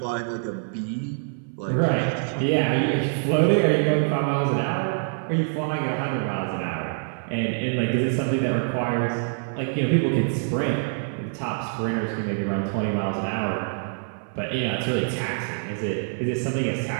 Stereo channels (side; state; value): left; silent; 59 dB below the other